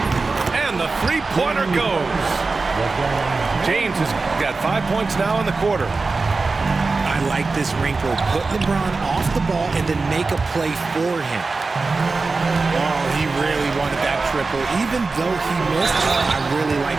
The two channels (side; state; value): left; quieter; 3.9 dB